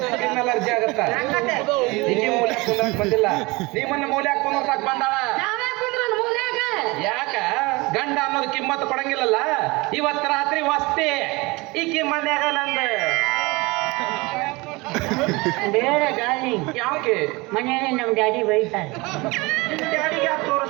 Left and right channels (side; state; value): left; quieter; 24.1 dB